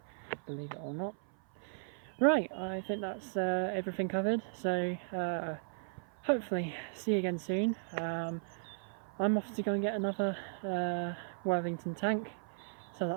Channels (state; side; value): silent; left; 54 dB below the other